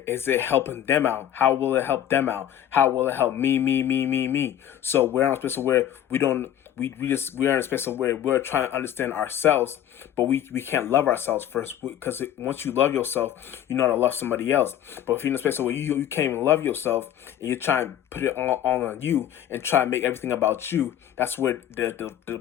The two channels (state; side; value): quieter; right; 10.9 dB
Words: it helping them out? How will it help them out? How will it help me? So we're in a space of where we are in a space of where we're trying to understand ourselves, but we can't love ourselves first, because once you love yourself, you know how to love somebody else. But if you're in a space where you can't even love yourself, and you're trying to put it all on you and try to make everything about you, that's where